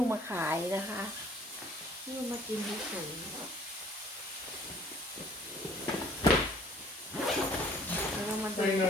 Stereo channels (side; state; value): both; normal; correlation 0.56